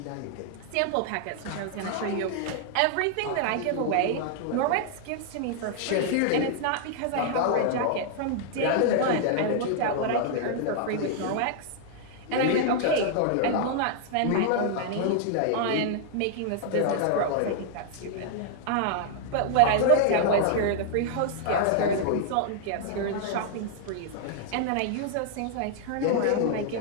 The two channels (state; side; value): different; both; correlation -0.01